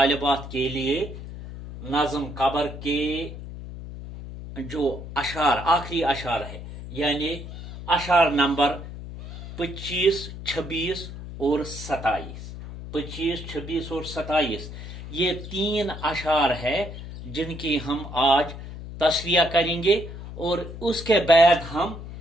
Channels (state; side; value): noise; left; hum, 11 dB below the sound